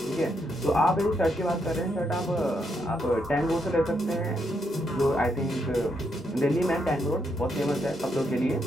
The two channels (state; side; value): normal; both; correlation 0.78